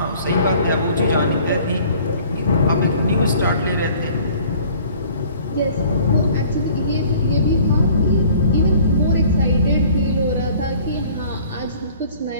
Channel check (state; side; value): inverted; both; correlation -0.52